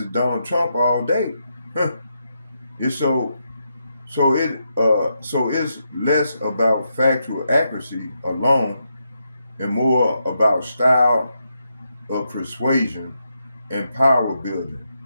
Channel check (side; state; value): both; inverted; correlation -0.83